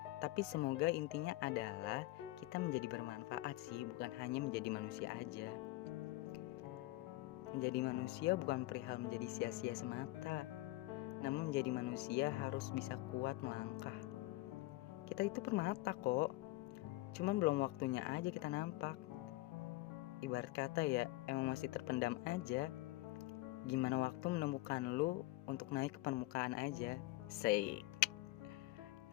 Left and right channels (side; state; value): right; quieter; 18.9 dB